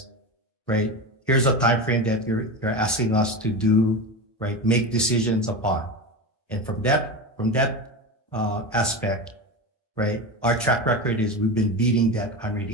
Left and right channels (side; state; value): both; normal; correlation 0.22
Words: right, here's a time frame that you're asking us to do, right, make decisions upon. And from that aspect, right, our track record is we've been beating that